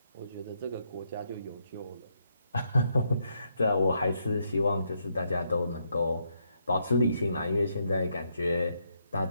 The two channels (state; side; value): inverted; both; correlation -0.77